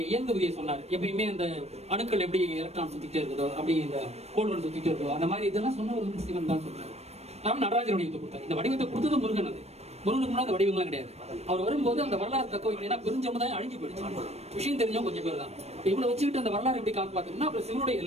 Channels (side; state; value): left; late; 0.31 ms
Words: இயங்கு விதியை சொன்னார். எப்பயுமே அந்த அணுக்கள் எப்படி எலக்ட்ரான் சுத்திட்டே இருக்குதோ, அப்படி இந்த கோள்கள் சுத்திட்டே இருக்கோ, அந்த மாதிரி இதெல்லாம் சொன்னவர் வந்து சிவன் தான் சொல்றாரு. அவன் நடராஜர் வடிவத்தை கொடுத்தார். இந்த வடிவத்தை கொடுத்தது முருகன். அது முருகனுக்கு முன்னாடி அந்த வடிவங்களாம் கிடையாது. அவர் வரும்போது அந்த வரலாறு தக்க வைக்கலைன்னா பெருஞ்சமுதாயம் அழிஞ்சு போயிடுச்சு. விஷயம் தெரிஞ்சவங்க கொஞ்சம் பேர் தான். இவ்வளவு வச்சுக்கிட்டு அந்த வரலாறு எப்படி காப்பாத்துனா அப்புறம் சிவனுடைய